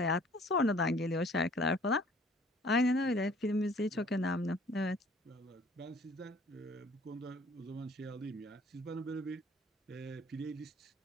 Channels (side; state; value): both; normal; correlation 0.55